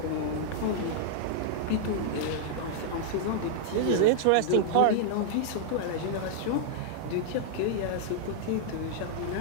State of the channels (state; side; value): different; both; correlation -0.01